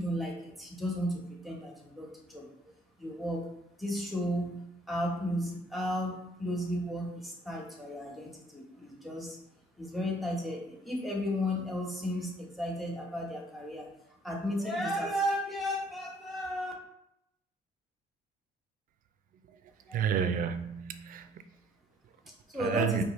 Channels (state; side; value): normal; both; correlation 0.62